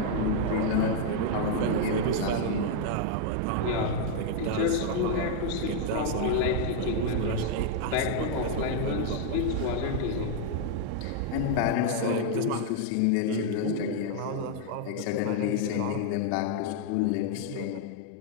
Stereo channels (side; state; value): both; different; correlation 0.00